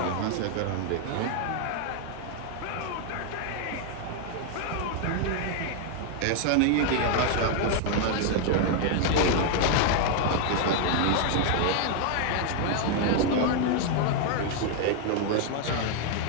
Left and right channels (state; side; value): different; both; correlation 0.00